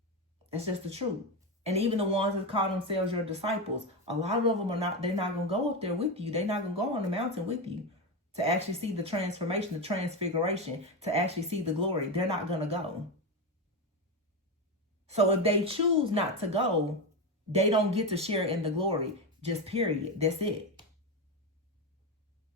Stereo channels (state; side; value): normal; both; correlation 0.14